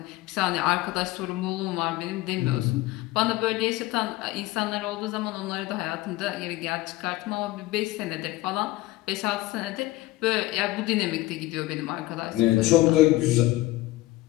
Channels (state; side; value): quieter; right; 18.2 dB